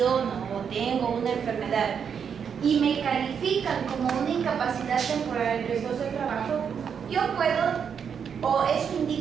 o tengo una enfermedad y me califican como una incapacidad temporal en riesgos del trabajo, yo puedo, o eso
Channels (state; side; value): quieter; left; 7.2 dB